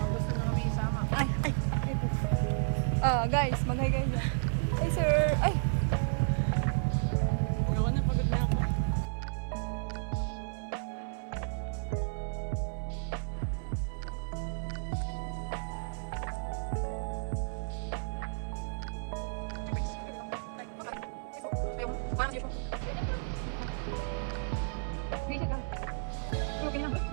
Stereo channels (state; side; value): silent; left; 56 dB below the other